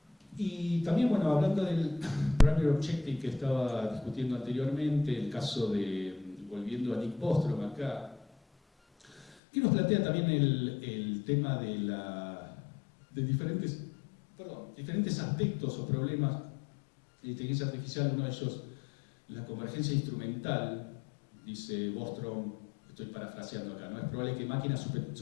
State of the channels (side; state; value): right; drops out; at 9.2 s